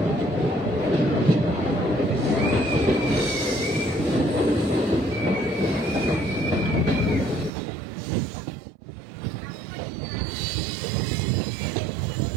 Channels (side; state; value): left; drops out; at 7.5 s